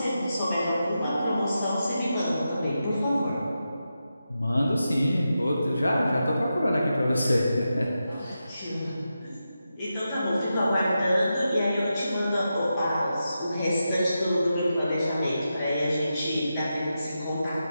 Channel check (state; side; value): inverted; both; correlation -0.89